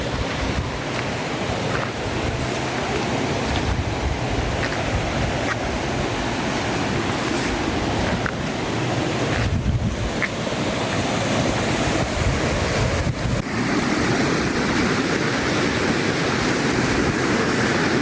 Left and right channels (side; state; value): both; identical; correlation 1.00